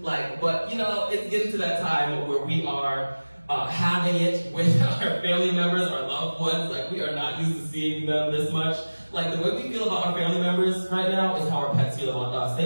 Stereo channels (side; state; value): both; inverted; correlation -1.00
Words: Like, but you know, it's getting to that time where we are having it with our family members, our loved ones. Like, we are not used to seeing them this much. Like, the way we feel about our family members right now is how our pets feel about us.